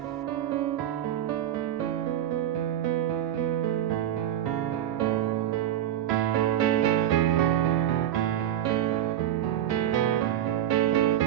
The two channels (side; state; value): left; quieter; 11.3 dB